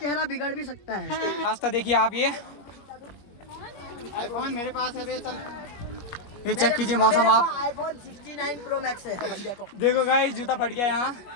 बिगड़ भी सकता है। रास्ता देखिए आप, ये आईफोन मेरे पास है बे, चल ये चेक कीजिए मौसम आप। आईफोन 69 प्रो मैक्स है। देखो गाइस जूता फट गया यहाँ।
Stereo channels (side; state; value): right; late; 20 ms